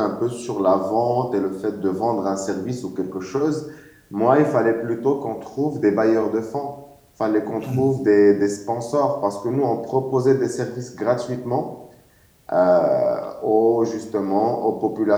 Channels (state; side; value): identical; both; correlation 1.00